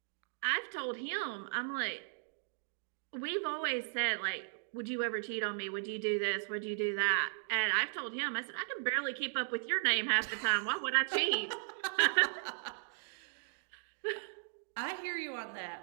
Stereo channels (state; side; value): silent; left; digital silence